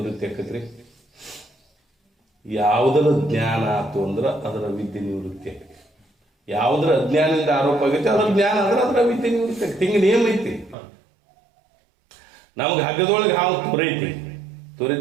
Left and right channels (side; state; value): left; drops out; at 10.8 s